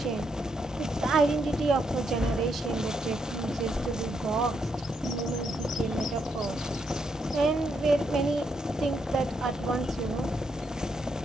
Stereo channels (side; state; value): both; normal; correlation 0.78